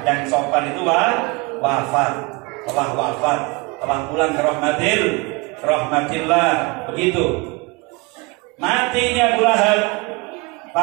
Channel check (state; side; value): quieter; left; 26.8 dB